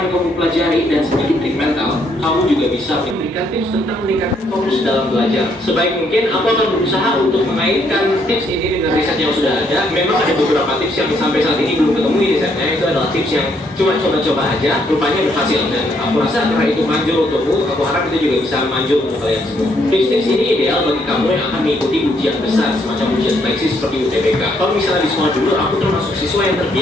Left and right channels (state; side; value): normal; both; correlation 0.71